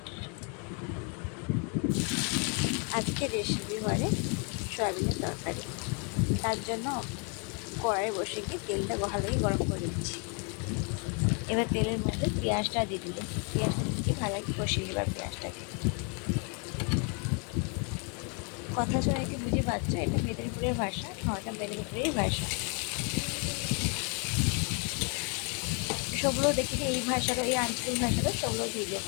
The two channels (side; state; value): right; quieter; 36.5 dB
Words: আজকে রেসিপি হয় সয়াবিনের তরকারি। তার জন্য কড়াই বসে গিয়ে তেলটা ভালোই গরম করে দিচ্ছি। এবার তেলের মধ্যে পেঁয়াজটা দিয়ে দিলে পেঁয়াজটা দিয়ে ভালো কষিয়ে এবার পেঁয়াজটাকে। কথা শুনে কি বুঝে পাচ্ছ, এটা মেদিনীপুরের ভাষা। এটা মেদিনীপুরের ভাষা। সবগুলো দেখি যে এই ভাষারও, এই আঞ্চলিক ভাষারও সবগুলো ভিডিও